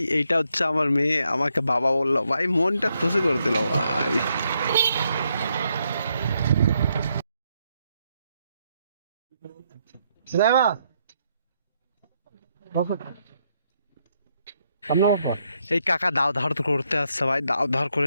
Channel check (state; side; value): inverted; both; correlation -0.78